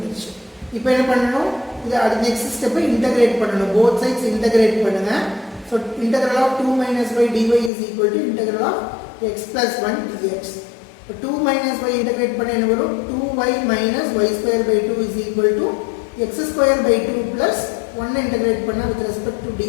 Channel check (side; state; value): right; drops out; at 7.7 s